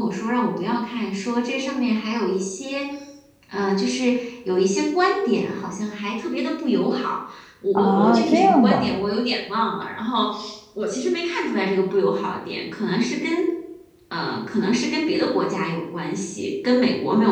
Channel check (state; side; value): identical; both; correlation 1.00